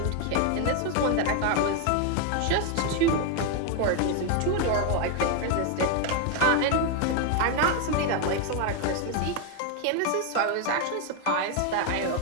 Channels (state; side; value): different; both; correlation 0.01